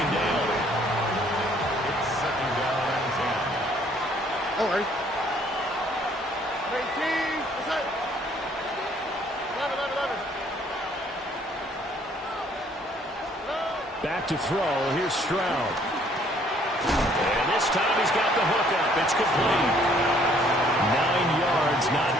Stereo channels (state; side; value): normal; both; correlation 0.62